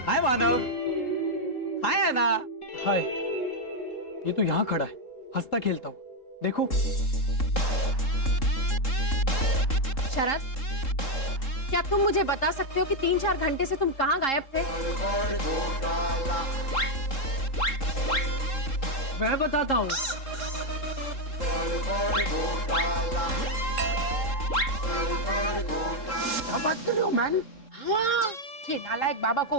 हाय मानव। हाय ऐना। हाय, ये तो यहाँ खड़ा है हंसता खेलता हुआ, देखो। शरद, क्या तुम मुझे बता सकते हो कि 3-4 घंटे से तुम कहाँ गायब थे? मैं बताता हूँ। क्या बात कर रहे हो मैन? हाँ, ये नालायक बाबा को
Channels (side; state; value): right; late; 3.7 ms